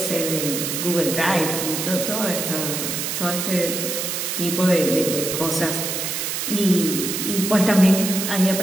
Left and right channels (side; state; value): right; noise; hiss, 3 dB below the sound